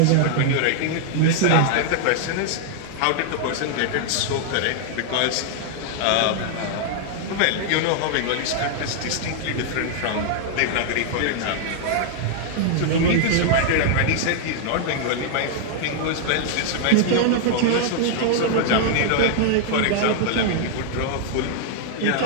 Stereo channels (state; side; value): different; both; correlation -0.01